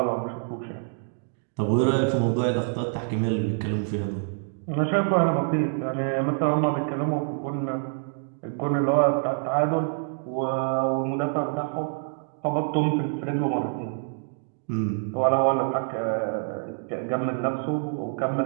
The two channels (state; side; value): silent; left; 61 dB below the other